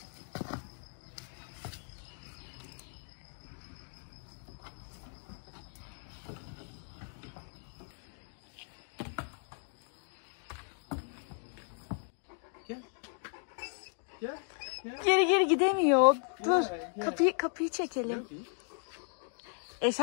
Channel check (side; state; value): right; silent; 54 dB below the other